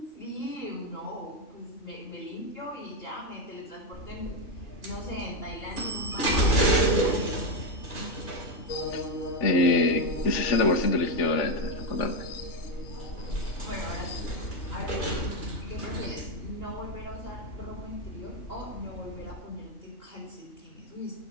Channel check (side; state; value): right; late; 3.4 ms